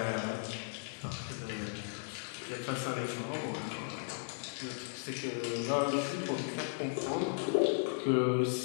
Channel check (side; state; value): right; silent; digital silence